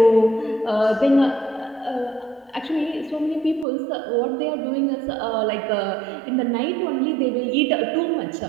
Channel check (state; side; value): drops out; left; at 3.7 s